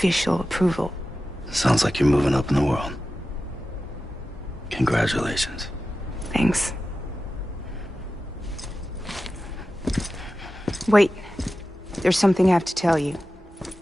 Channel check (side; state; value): both; normal; correlation 0.93